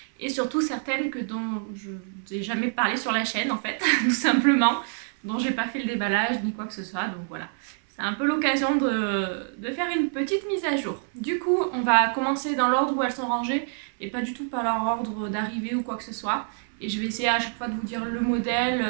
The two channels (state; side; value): silent; left; 61 dB below the other